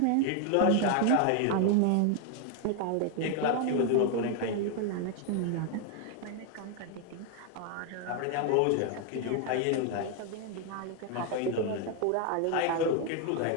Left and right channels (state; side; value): different; both; correlation 0.00